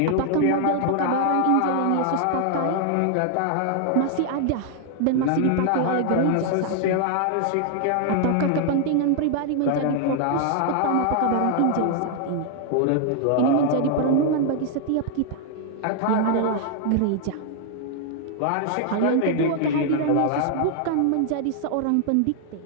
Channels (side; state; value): both; different; correlation 0.00